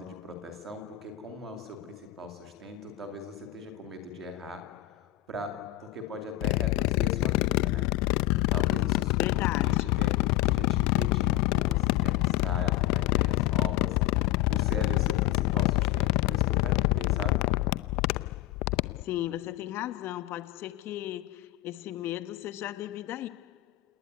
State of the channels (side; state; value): right; quieter; 15.8 dB